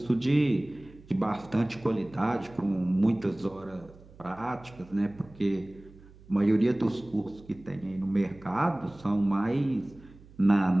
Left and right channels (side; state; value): right; noise; hum, 23 dB below the sound